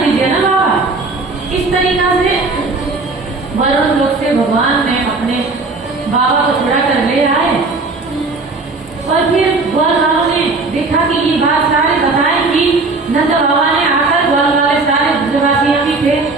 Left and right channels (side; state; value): left; quieter; 3.6 dB